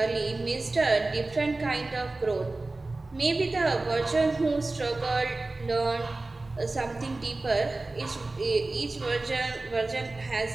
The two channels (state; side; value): quieter; left; 3.1 dB